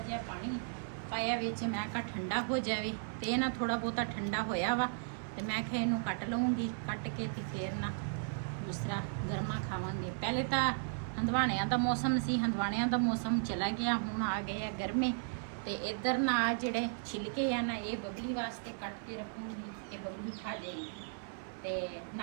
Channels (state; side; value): silent; left; 54 dB below the other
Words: ਪਾਣੀ ਪਾਇਆ ਵਿੱਚ ਮੈਂ ਕਿਹਾ ਠੰਡਾ ਹੋ ਜਾਵੇ ਤੇ ਇਹ ਨਾ ਥੋੜਾ ਬਹੁਤਾ ਠੰਡਾ ਹੋਇਆ ਵਾ ਤੇ ਮੈਂ ਕਿਹਾ ਇਹਨੂੰ ਕੱਟ ਲਵਾਂਗੀ ਕੱਟ ਕੇ ਤੇ ਫੇਰ ਨਾ ਦੂਸਰਾ ਗਰਮਾ ਖਾਵਾਂਗੇ ਪਹਿਲੇ ਤਾਂ ਹੰਦਵਾਣਿਆਂ ਦਾ ਮੌਸਮ ਸੀ ਹੰਦਵਾਣਿਆਂ ਦਾ ਮੌਸਮ ਚਲਾ ਗਿਆ ਹੁਣ ਆ ਗਏ ਆ ਗਰਮੇ ਤੇ ਇੱਧਰ ਨਾ ਜਿਹੜੇ ਛਿਲਕੇ ਆ ਨਾ ਇਹ ਬਬਲੀ ਵਾਸਤੇ ਕੱਟ ਕੇ ਰੱਖੂੰਗੀ ਕਿ ਬਬਲੀ ਖਾ ਜਾਏਗੀ ਤੇ